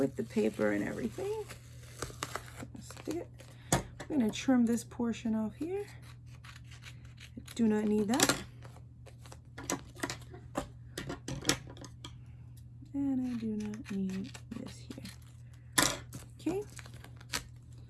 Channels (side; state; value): both; identical; correlation 1.00